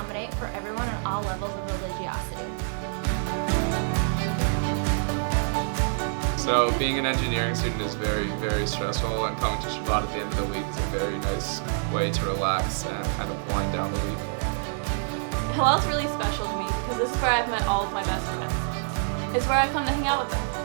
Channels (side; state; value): left; silent; digital silence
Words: for everyone on all levels of religiosity. So being an engineering student is very, very stressful, and coming to Shabbat at the end of the week is a very nice way to relax and kind of wind down the week. Hillel's really special to me because this is where I've met all of my best friends. It's where I come to hang out with them.